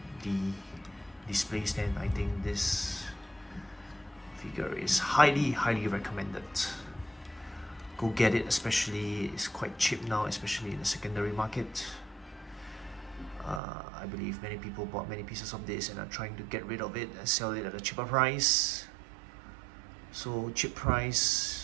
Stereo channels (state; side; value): drops out; left; at 13.6 s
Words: the display stand, I think this figure is highly recommended. Go get it, especially it's quite cheap now, especially in the secondary market. I believe many people bought many pieces of this and are trying to get rid of it and sell it at a cheaper price. So cheap